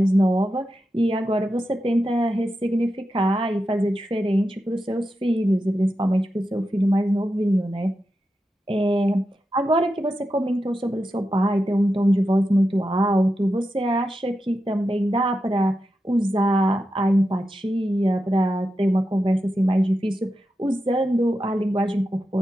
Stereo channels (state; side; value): normal; both; correlation 0.89